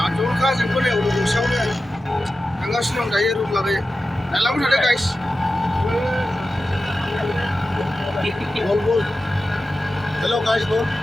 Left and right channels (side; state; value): both; normal; correlation 0.93